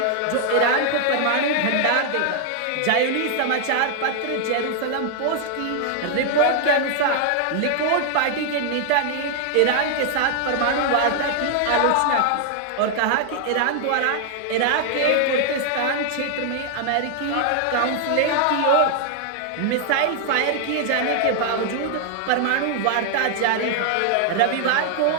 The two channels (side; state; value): both; different; correlation 0.00